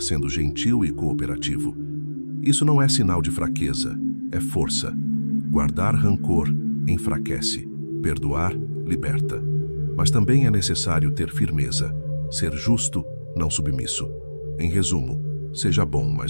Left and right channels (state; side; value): inverted; both; correlation -1.00